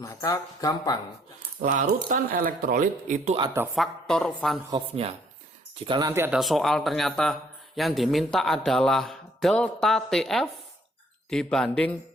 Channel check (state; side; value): normal; both; correlation 0.65